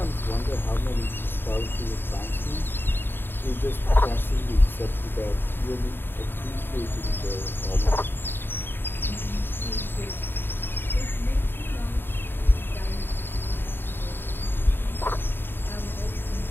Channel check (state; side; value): late; right; 0.10 ms